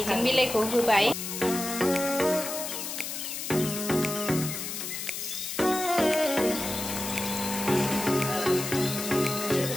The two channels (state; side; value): noise; left; hiss, 5 dB below the sound